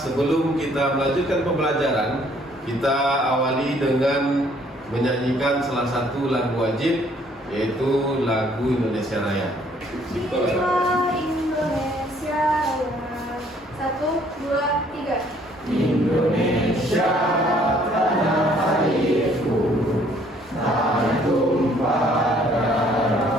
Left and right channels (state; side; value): normal; both; correlation 0.62